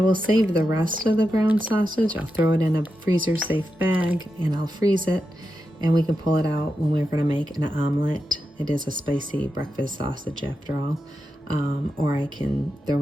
save the rest of the brown sausage. I'll throw it in a freezer safe bag and I'll freeze it, and we can pull it out when we're going to make an omelet. It is a spicy breakfast sausage after all. Or I can throw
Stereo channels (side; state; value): both; normal; correlation 0.88